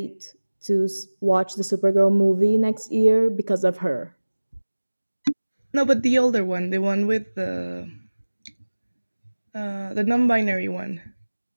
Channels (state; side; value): inverted; both; correlation -1.00